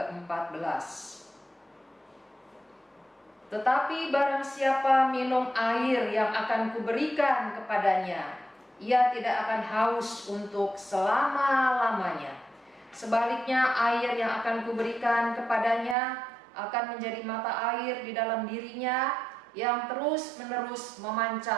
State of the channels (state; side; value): drops out; left; at 16.0 s